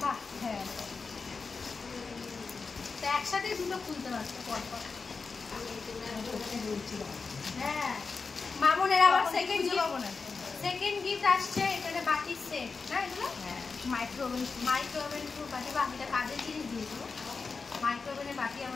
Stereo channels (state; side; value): quieter; right; 4.7 dB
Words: বাহ, হ্যাঁ তো একসাথে দুটো খুলতে পারতো পর পর। হ্যাঁ মামনের আবার সেকেন্ড সেকেন্ড গিফট আসছে এখানে বাটির সেট না এগুলো মাইক্রোওভেন বাটি বা এটা কাজের জিনিস দিয়েছো মাইক্রোওভেনের বাটি